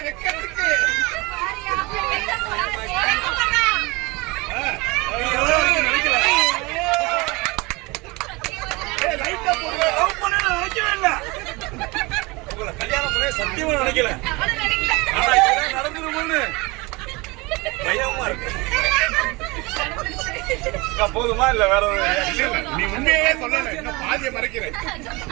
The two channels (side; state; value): left; quieter; 24.9 dB